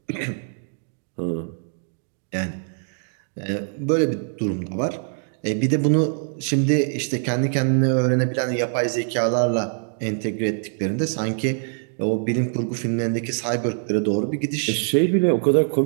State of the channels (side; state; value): left; silent; 62 dB below the other